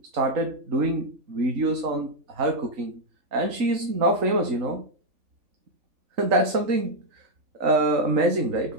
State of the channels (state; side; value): late; left; 3.5 ms